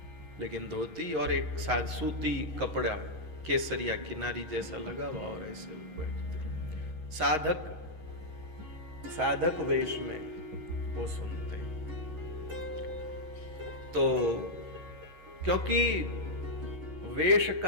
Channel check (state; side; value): late; right; 6.3 ms